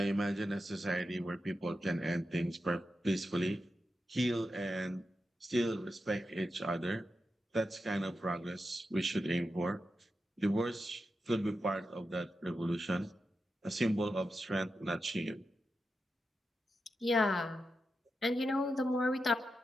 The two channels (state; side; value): normal; both; correlation 0.89